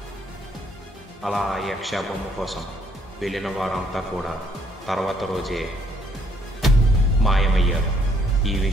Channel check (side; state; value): both; normal; correlation 0.68